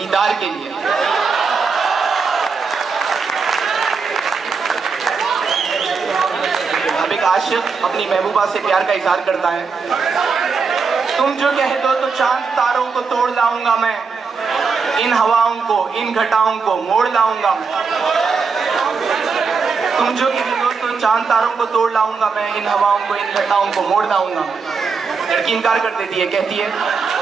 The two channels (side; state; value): left; quieter; 5.1 dB